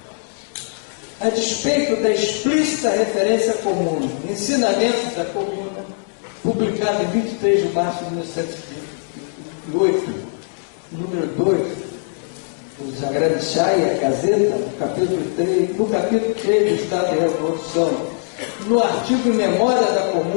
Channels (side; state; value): right; silent; digital silence